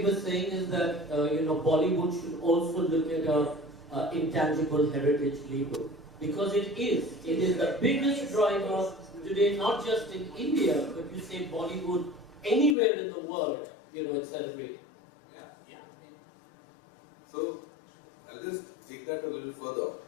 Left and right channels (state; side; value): drops out; right; at 12.8 s